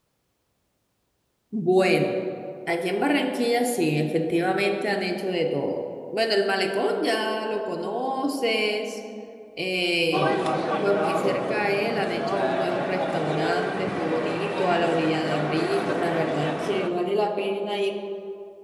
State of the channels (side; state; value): both; identical; correlation 1.00